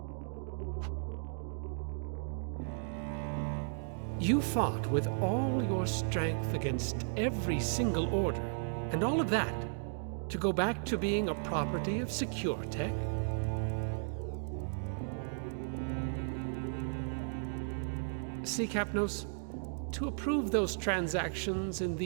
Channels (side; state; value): left; silent; digital silence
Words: You fought with all your strength against every single order, and all of that to go back to being a property of SecureTech? See, Kapnos, to approve those transactions in